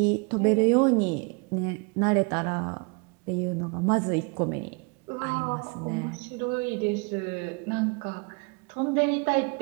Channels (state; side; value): quieter; left; 32.0 dB